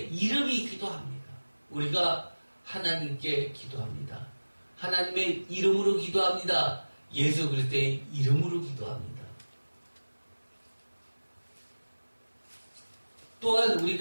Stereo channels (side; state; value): both; inverted; correlation -1.00